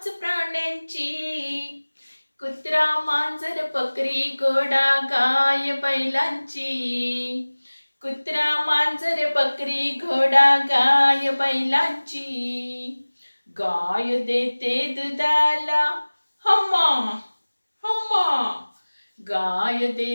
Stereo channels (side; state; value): both; inverted; correlation -1.00